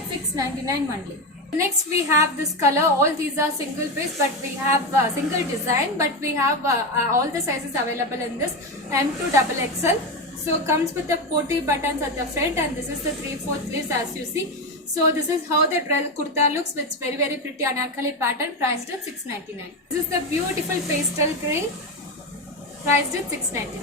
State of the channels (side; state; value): both; normal; correlation 0.14